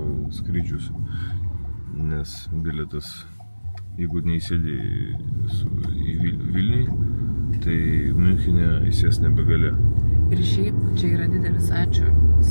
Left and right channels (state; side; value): inverted; both; correlation -1.00